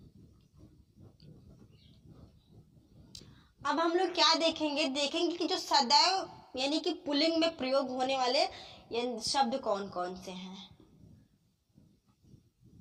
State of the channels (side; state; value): both; identical; correlation 1.00